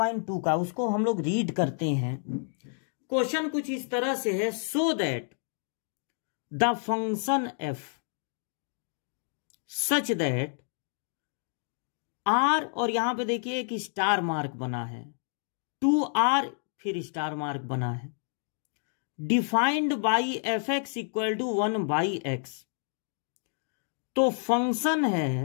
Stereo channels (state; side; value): silent; right; 58 dB below the other